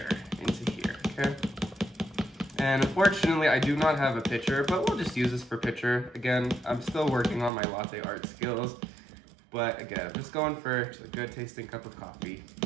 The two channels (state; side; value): drops out; left; at 7.5 s